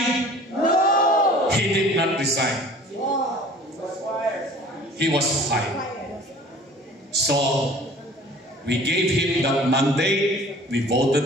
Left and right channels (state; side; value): normal; both; correlation 0.47